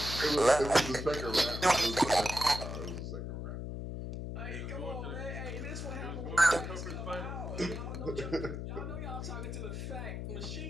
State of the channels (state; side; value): noise; left; hum, 5 dB below the sound